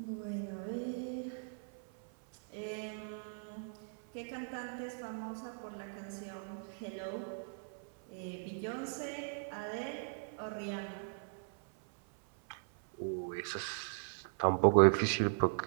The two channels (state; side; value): silent; left; 52 dB below the other